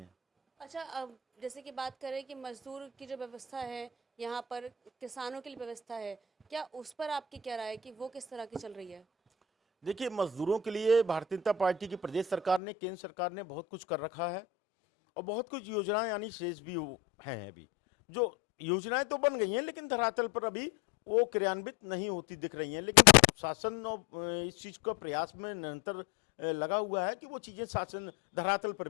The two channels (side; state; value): right; drops out; at 12.6 s